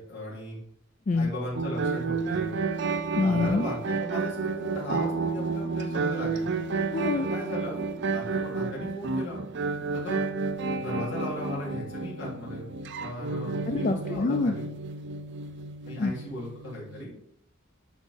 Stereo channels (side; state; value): both; normal; correlation 0.38